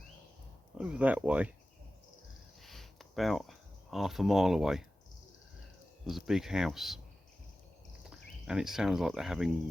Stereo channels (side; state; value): both; normal; correlation 0.95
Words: Over that way, about half a mile away, there's a big house. And it sounds like they're